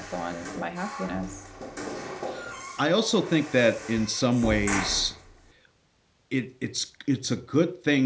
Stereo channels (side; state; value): both; identical; correlation 1.00